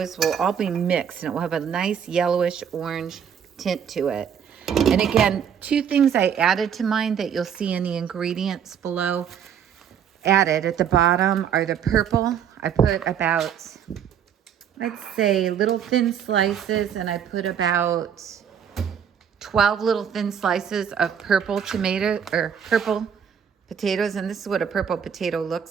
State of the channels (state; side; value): quieter; left; 8.2 dB